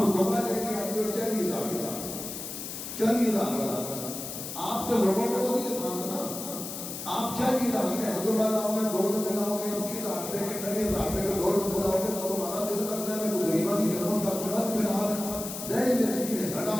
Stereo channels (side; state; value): left; noise; hiss, 8 dB below the sound